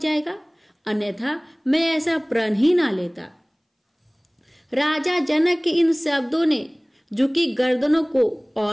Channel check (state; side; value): identical; both; correlation 1.00